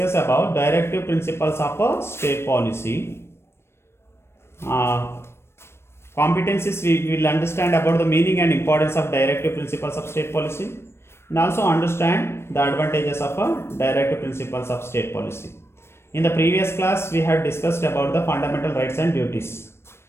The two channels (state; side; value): late; right; 0.12 ms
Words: about directive principles of a state policy. Competencies we will understand about the meaning and importance of directive principles of state policy, and also understand the advantages of a directive principles of state policy. In the previous class we had discussed about the fundamental rights and duties,